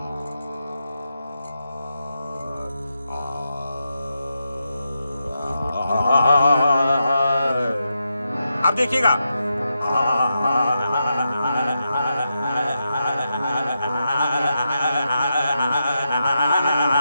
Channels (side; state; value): both; inverted; correlation -0.86